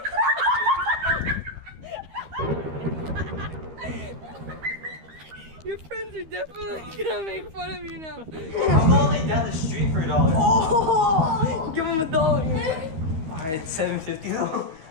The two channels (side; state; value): left; late; 13 ms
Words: Your friends are definitely gonna make fun of you now. I'm only down the street for $1. Oh, give him $1. Alright, $7.50 though.